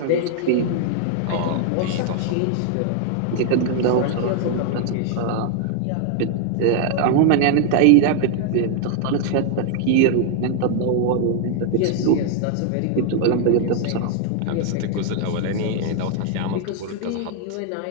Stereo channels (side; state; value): both; different; correlation 0.00